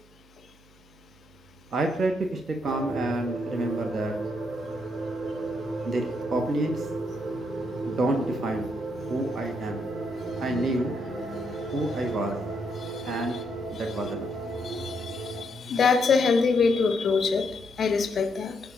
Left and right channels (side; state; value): right; noise; hum, 28 dB below the sound